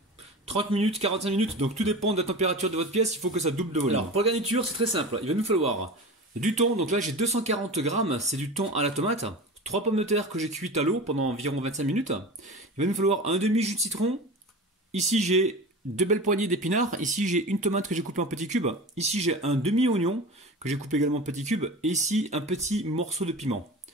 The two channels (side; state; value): both; normal; correlation 0.32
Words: 30 minutes, 45 minutes, donc tout dépend de la température de votre pièce, il faut que ça double de volume. Alors pour la garniture, c'est très simple, il va nous falloir du thon, donc là j'ai 240 g, c'est du thon à la tomate, 3 pommes de terre que j'ai cuites à l'eau pendant environ 25 minutes, il va nous falloir un demi jus de citron, ici j'ai 2 belles poignées d'épinards, ici j'ai une tomate que j'ai coupée en petits cubes, ici j'ai un demi oignon que j'ai coupé également en petits cubes, et ici un petit morceau de piment.